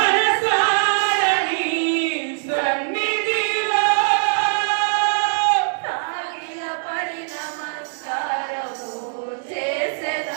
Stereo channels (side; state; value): left; silent; digital silence